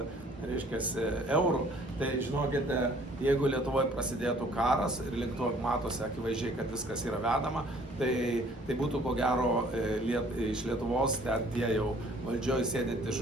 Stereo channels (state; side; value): normal; both; correlation 0.57